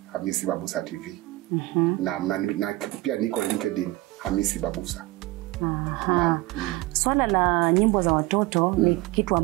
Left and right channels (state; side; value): quieter; left; 19.7 dB